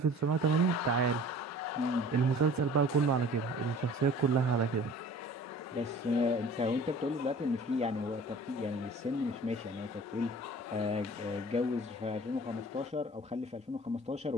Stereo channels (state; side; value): normal; both; correlation 0.46